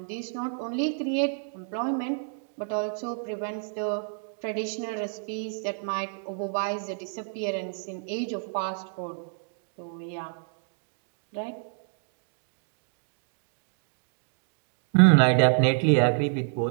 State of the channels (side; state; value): left; silent; digital silence